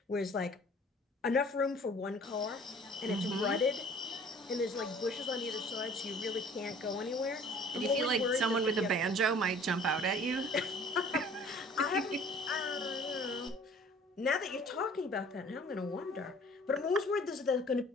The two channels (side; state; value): both; normal; correlation 0.50